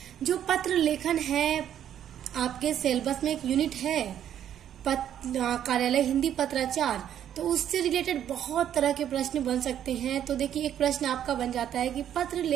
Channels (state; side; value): quieter; left; 10.2 dB